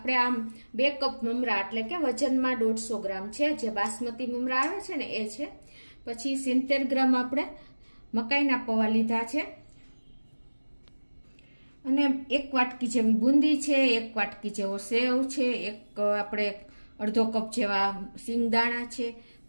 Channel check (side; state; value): both; inverted; correlation -1.00